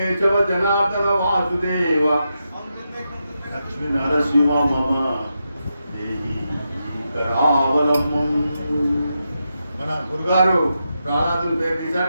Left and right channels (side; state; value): both; inverted; correlation -0.86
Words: జనార్దన వాసుదేవ లక్ష్మీ నరసింహ మమ దేహి కరావలంబం. మన గురుగారు ప్రహ్లాదుని పేరు